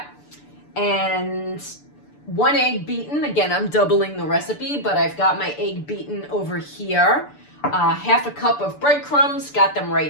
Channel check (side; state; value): right; late; 6.8 ms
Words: And 1 egg beaten. Again, I'm doubling the recipe, but I've got my egg beaten over here. Half a cup of breadcrumbs, got them